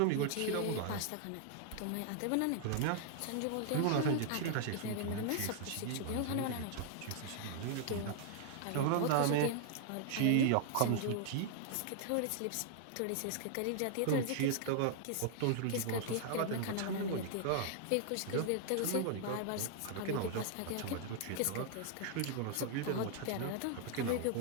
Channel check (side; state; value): both; different; correlation -0.01